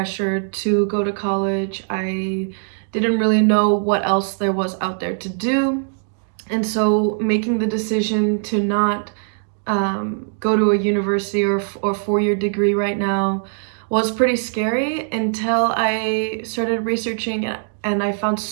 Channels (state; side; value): silent; left; digital silence